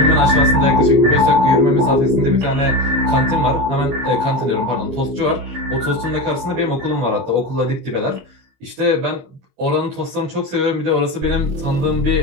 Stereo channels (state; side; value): late; left; 22 ms